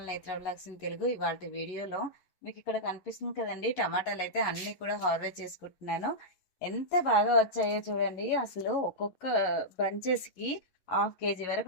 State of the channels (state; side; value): late; right; 11 ms